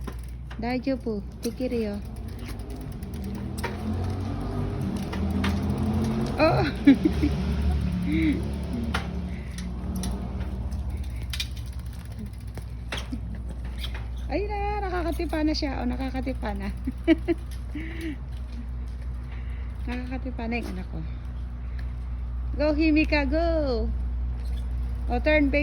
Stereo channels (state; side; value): identical; both; correlation 1.00